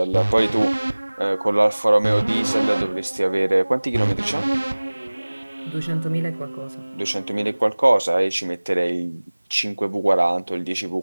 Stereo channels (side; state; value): both; inverted; correlation -1.00